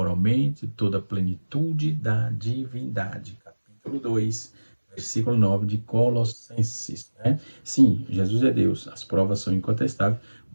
toda a plenitude da divindade. Capítulo 2, versículo 9 de Colossenses. Né? Sim, Jesus é Deus, as provas são incontestáveis,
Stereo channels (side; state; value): both; inverted; correlation -1.00